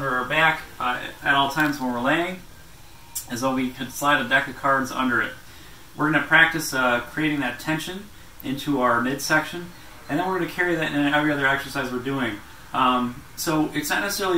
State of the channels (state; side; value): identical; both; correlation 1.00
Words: our back at all times when we're laying, as though we could slide a deck of cards under it. We're going to practice creating that tension into our midsection, and then we're going to carry that in every other exercise we're doing. So it's not